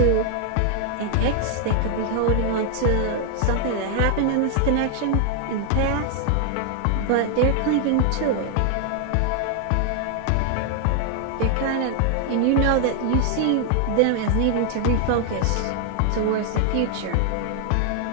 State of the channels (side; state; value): both; different; correlation 0.00